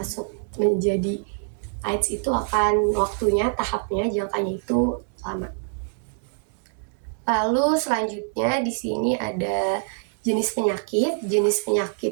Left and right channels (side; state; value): left; silent; 62 dB below the other